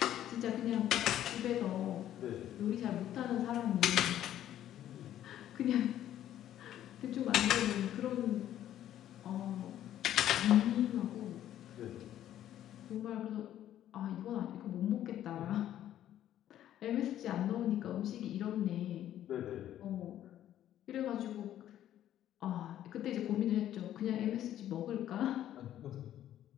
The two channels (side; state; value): right; quieter; 11.8 dB